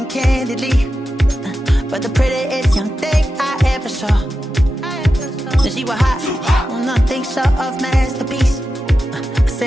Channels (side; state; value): both; normal; correlation 0.90